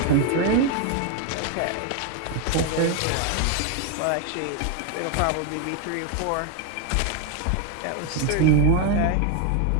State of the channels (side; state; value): both; different; correlation 0.01